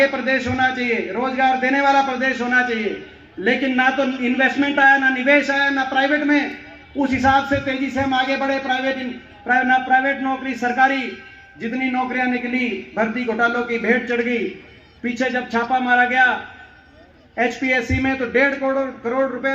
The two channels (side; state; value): both; identical; correlation 1.00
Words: प्रदेश होना चाहिए, रोजगार देने वाला प्रदेश होना चाहिए, लेकिन ना तो इन्वेस्टमेंट आया, ना निवेश आया, ना प्राइवेट में उस हिसाब से तेजी से हम आगे बढ़े। प्राइवेट नौकरी, सरकारी जितनी नौकरियां निकली, भर्ती घोटालों की भेंट चढ़ गई। पीछे जब छापा मारा गया एचपीएससी में तो 1.5 करोड़